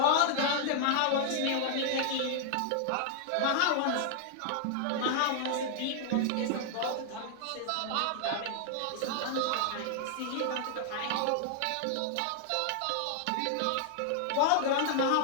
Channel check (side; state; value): both; different; correlation 0.00